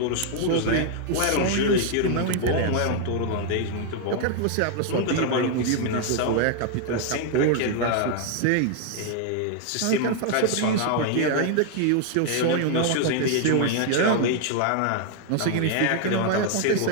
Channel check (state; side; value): different; both; correlation 0.00